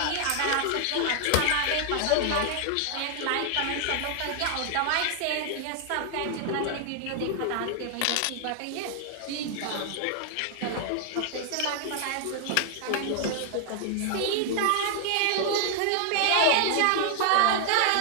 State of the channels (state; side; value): different; both; correlation 0.00